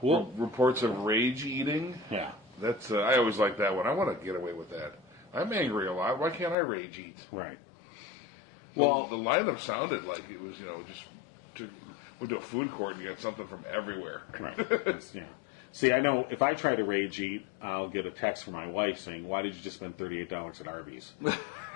of rage eating. Yeah. That's, I always like that one. I want to get away with that. I'm angry a lot. Why can't I rage eat? Right. Well, the lineup sounded like it was, went to a food court and get something from everywhere. Right. Yeah. See, I know if I try to rage eat, I'll get a text from my wife saying, "Why did you just spend $38 at Arby's?"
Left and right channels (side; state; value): right; drops out; at 6.6 s